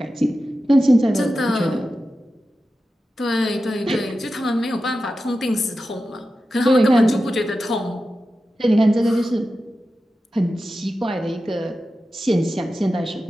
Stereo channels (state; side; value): normal; both; correlation 0.92